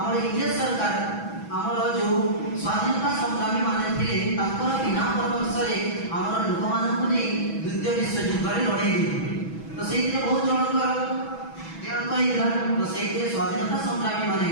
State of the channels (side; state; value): right; late; 6.1 ms